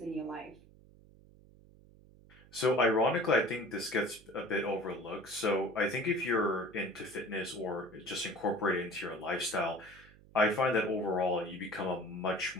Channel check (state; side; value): noise; right; hum, 24 dB below the sound